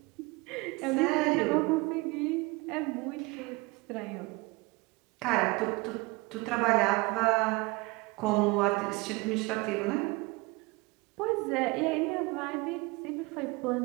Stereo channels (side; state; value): left; quieter; 25.2 dB